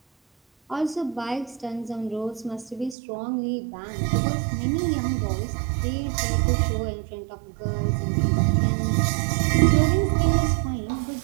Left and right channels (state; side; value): drops out; left; at 3.0 s